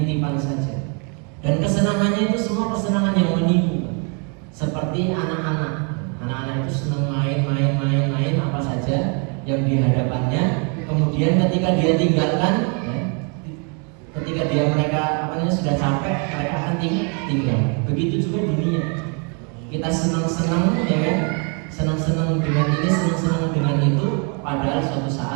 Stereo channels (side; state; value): left; quieter; 36.7 dB